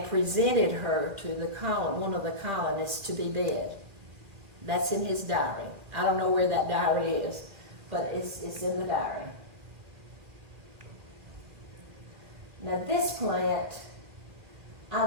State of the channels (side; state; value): left; late; 1.9 ms